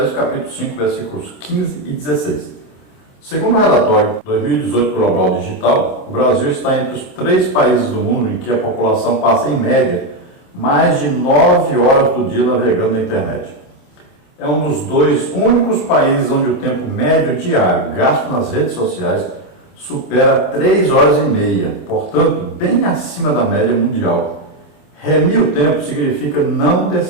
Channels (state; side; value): late; right; 26 ms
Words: capítulo 5, versículos 15 e 16. Segundo o relatório 2018 Global Digital, o Brasil está entre os 3 países do mundo em que a população passa, em média, mais de 9 horas do dia navegando na internet. É um dos 2 únicos países onde o tempo médio diário gasto nas redes sociais supera 3 horas e meia, portanto, bem acima da média mundial. Remir o tempo significa não